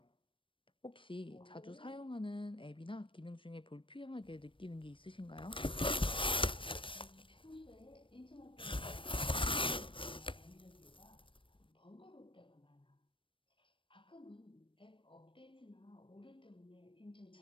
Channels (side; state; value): right; late; 0.25 ms